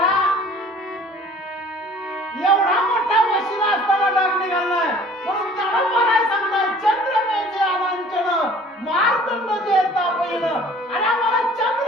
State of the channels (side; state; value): both; normal; correlation 0.50